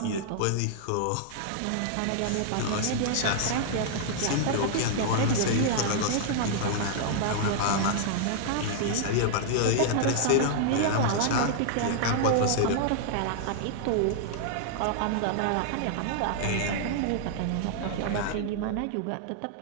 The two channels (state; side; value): different; both; correlation -0.01